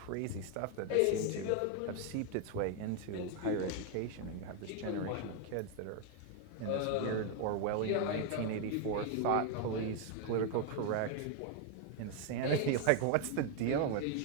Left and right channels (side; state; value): both; different; correlation 0.01